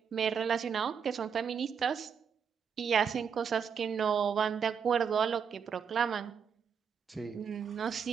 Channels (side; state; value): left; quieter; 7.0 dB